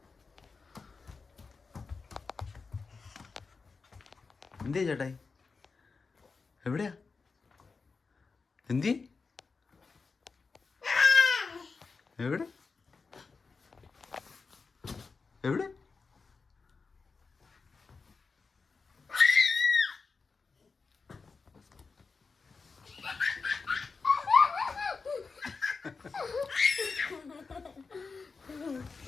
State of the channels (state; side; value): quieter; right; 4.6 dB